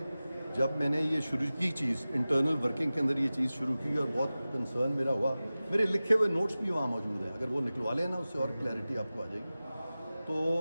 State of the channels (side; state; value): both; inverted; correlation -0.97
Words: जब मैंने ये शुरू की चीज़, इंटरनल वर्किंग के अंदर ये चीज़ शुरू की और बहुत कंसर्न मेरा हुआ, मेरे लिखे हुए नोट्स भी वहाँ मौजूद हैं, अगर वो निकलवा लें ना उससे और क्लैरिटी आपको आ जाएगी। तो